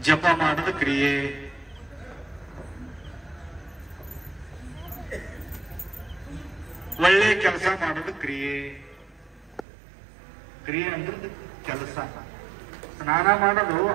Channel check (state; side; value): drops out; left; at 9.7 s